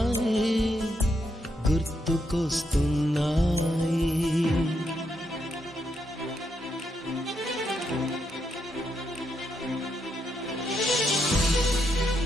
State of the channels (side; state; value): both; normal; correlation 0.80